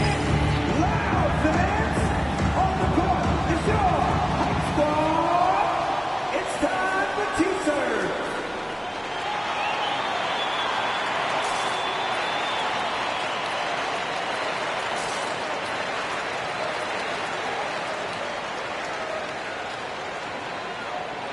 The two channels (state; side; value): identical; both; correlation 1.00